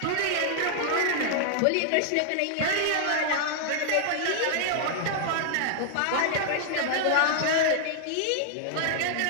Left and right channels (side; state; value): both; different; correlation -0.01